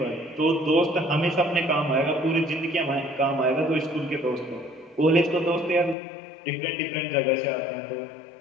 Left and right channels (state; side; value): drops out; right; at 6.0 s